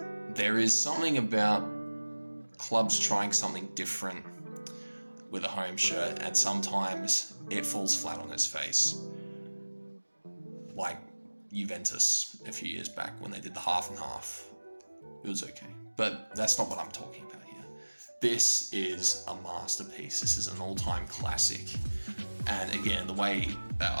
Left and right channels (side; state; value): both; inverted; correlation -1.00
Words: There is something about clubs trying something different with a home shirt, and sometimes it falls flat on its face. Like Juventus a few years back when they did the half and half. It was okay, but that's not what I'm talking about here. This is a masterpiece. This is an all-time classic. And again, the way that